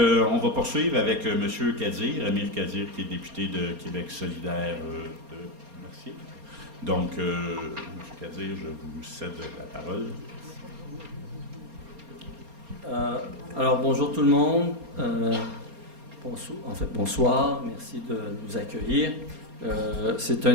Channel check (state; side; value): late; left; 4.3 ms